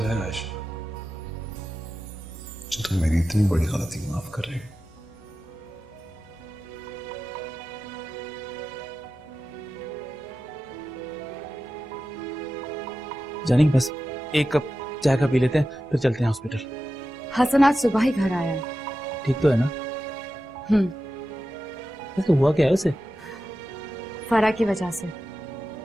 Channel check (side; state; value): both; normal; correlation 0.93